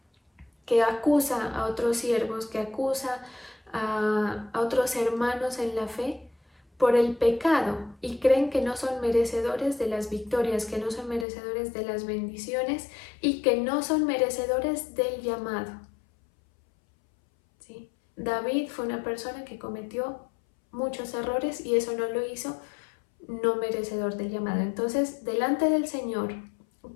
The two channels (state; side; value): drops out; right; at 11.2 s